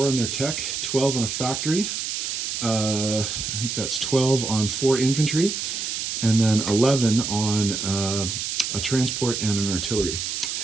on their tech, 12 on a factory. I think that's 12 on 4 infantry, and then 11 on a transport and an artillery.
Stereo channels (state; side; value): noise; right; hiss, 3 dB below the sound